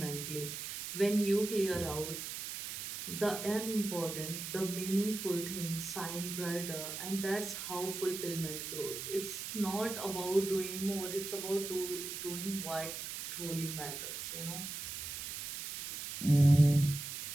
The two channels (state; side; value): noise; right; hiss, 6 dB below the sound